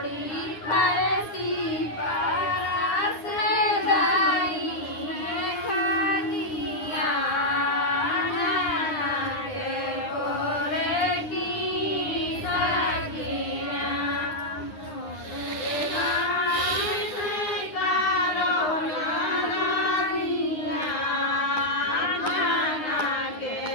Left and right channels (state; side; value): late; right; 9.8 ms